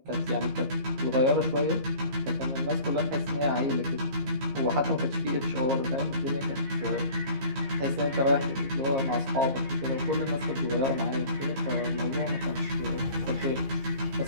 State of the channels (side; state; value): left; late; 15 ms